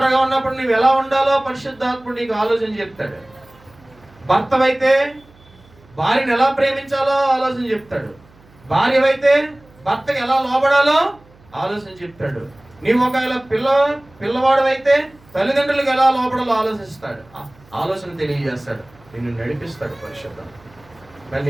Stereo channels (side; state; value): right; noise; hum, 28 dB below the sound